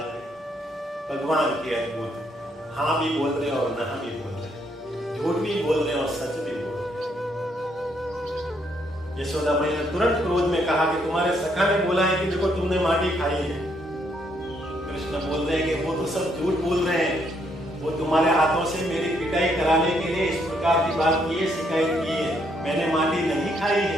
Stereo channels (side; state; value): both; normal; correlation 0.73